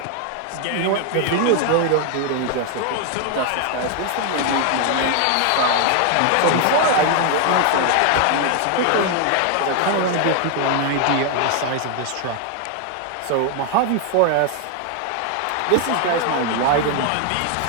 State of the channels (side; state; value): both; different; correlation 0.00